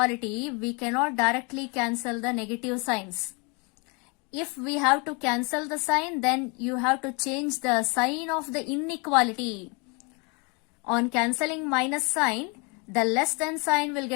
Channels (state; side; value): quieter; right; 31.7 dB